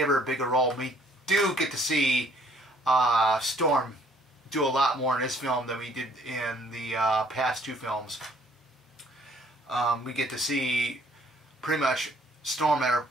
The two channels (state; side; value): normal; both; correlation 0.62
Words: her a bigger role. We do get to see Storm do a lot more in this film than we did in the past two films. We get to see pretty much Storm at her